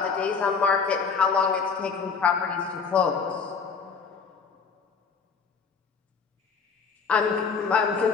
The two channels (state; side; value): quieter; right; 5.5 dB